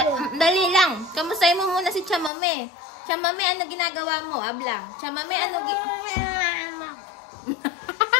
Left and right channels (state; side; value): drops out; right; at 2.3 s